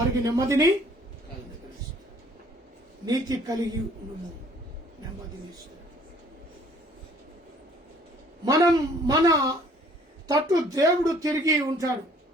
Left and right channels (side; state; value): both; normal; correlation 0.58